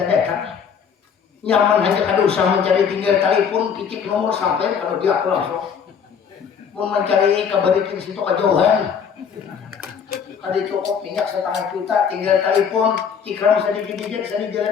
datang nyaman hanya kada usah mencari tinggal telepon kicik nomor sampai kalau dia aku langsung mau mencari kabarikin situ kejauhan ada cukup minyak setengah juta tinggal telepon cikram sedikit saya di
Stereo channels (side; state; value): right; quieter; 7.0 dB